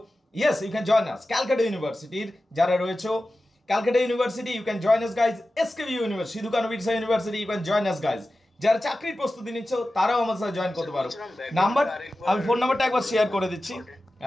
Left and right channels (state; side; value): normal; both; correlation 0.94